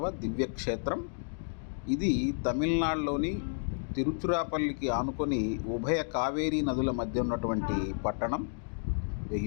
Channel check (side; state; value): right; silent; digital silence